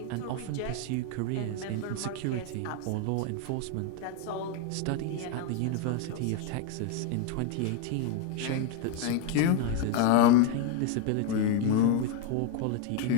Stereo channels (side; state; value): both; different; correlation 0.01